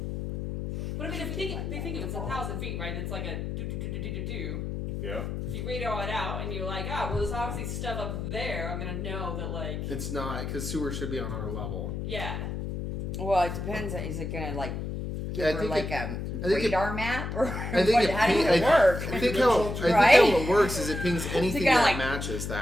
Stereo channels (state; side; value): noise; left; hum, 4 dB below the sound